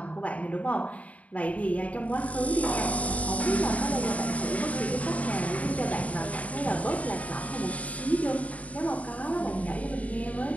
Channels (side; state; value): right; late; 0.068 ms